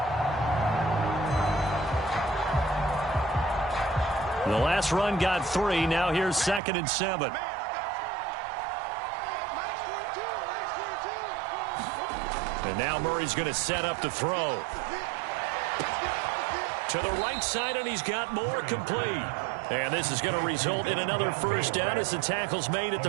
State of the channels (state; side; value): drops out; left; at 6.6 s